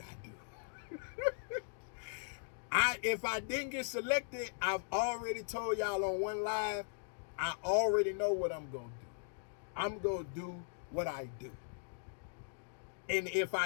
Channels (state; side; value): silent; right; digital silence